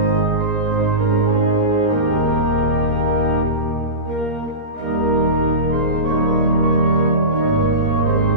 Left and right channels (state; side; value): late; left; 17 ms